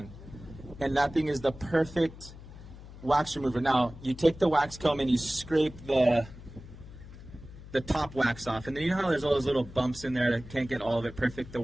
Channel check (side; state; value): left; noise; hum, 16 dB below the sound